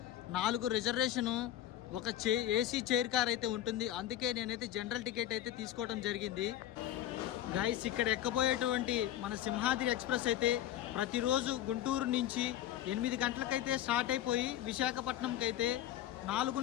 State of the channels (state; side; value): quieter; right; 12.2 dB